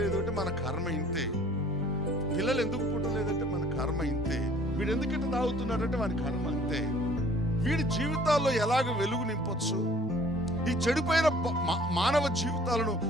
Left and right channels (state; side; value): normal; both; correlation 0.53